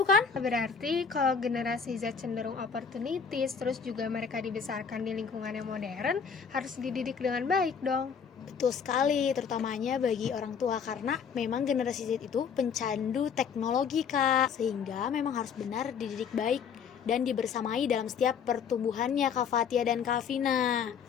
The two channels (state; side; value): quieter; right; 6.5 dB